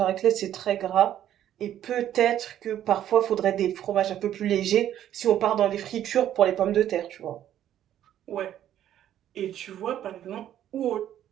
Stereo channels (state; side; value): quieter; left; 11.3 dB